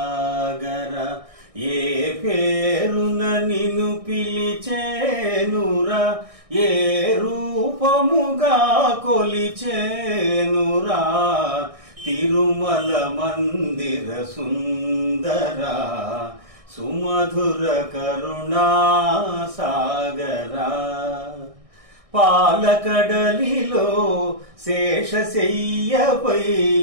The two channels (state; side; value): late; left; 1.6 ms